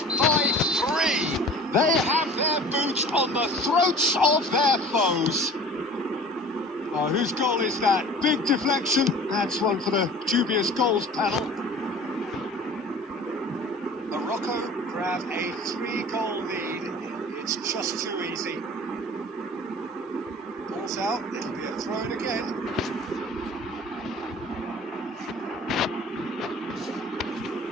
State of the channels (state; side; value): normal; both; correlation 0.43